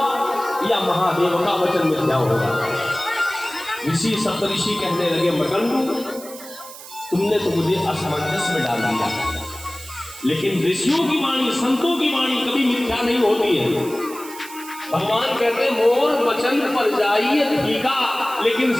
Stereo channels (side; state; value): right; noise; hiss, 15 dB below the sound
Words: या महादेव का वचन मिथ्या होगा? ऋषि सप्तऋषि कहने लगे, मरकंडू, तुमने तो मुझे असमंजस में डाल दिया, लेकिन ऋषियों की वाणी, संतों की वाणी कभी मिथ्या नहीं होती है। भगवान कहते, मोर वचन पर जाइए ठीका, लेकिन